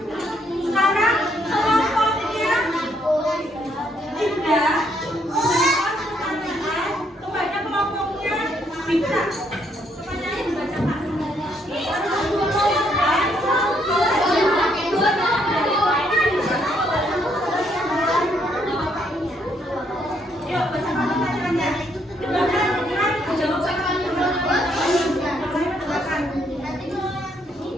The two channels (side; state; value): both; normal; correlation 0.71